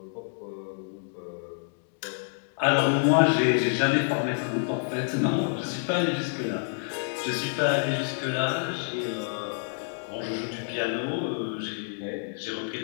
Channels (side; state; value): right; silent; digital silence